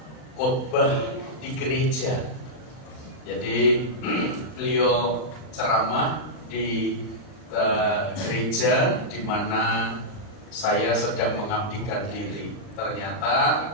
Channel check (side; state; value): right; late; 39 ms